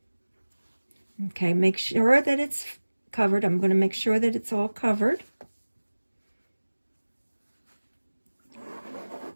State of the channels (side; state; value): both; inverted; correlation -1.00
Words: Okay, make sure that it's covered. I'm going to make sure that it's all covered.